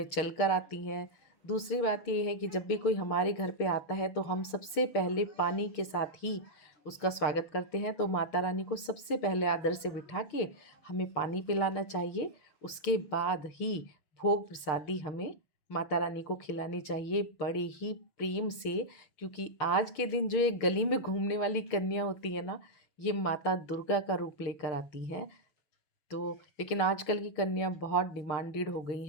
चल कर आती हैं, दूसरी बात ये है कि जब भी कोई हमारे घर पे आता है तो हम सबसे पहले पानी के साथ ही उसका स्वागत करते हैं। तो माता रानी को सबसे पहले आदर से बिठा के हमें पानी पिलाना चाहिए, उसके बाद ही भोग प्रसादी हमें माता रानी को खिलानी चाहिए बड़े ही प्रेम से। क्योंकि आज के दिन जो ये गली में घूमने वाली कन्या होती है ना, ये माता दुर्गा का रूप लेकर आती हैं। तो लेकिन आजकल की कन्या बहुत डिमांडेड हो गई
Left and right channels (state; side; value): late; right; 6.6 ms